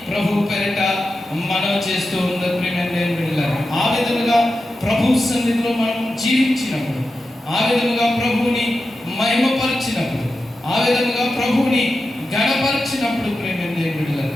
ప్రభు పేరిట మనం చేస్తూ ఉన్న ప్రియమైన బిడ్డలారా, ఆ విధముగా ప్రభు సన్నిధిలో మనం జీవించినప్పుడు, ఆ విధముగా ప్రభువుని మహిమపరిచినప్పుడు, ఆ విధముగా ప్రభువుని గణపరిచినప్పుడు ప్రియమైన బిడ్డలారా,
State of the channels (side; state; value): both; normal; correlation 0.91